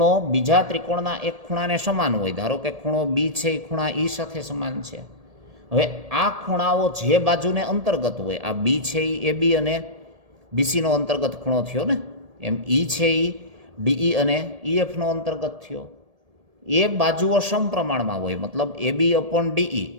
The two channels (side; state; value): left; late; 1.7 ms